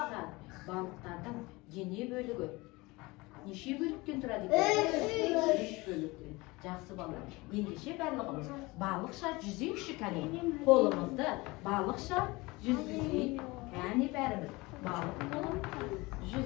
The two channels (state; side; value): quieter; right; 23.0 dB